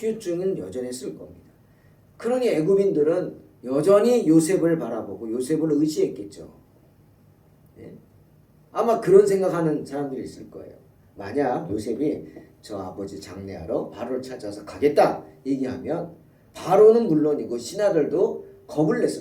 여전했을 겁니다. 그러니 애굽인들은 여전히 요셉을 바라보고 요셉을 의지했겠죠. 네? 아마 그런 생각하는 사람들이 있을 거예요. 만약 요셉이 저 아버지 장례하러 바로를 찾아서 가겠다 얘기하면 바로는 물론이고 신하들도 겁을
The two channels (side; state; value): both; identical; correlation 1.00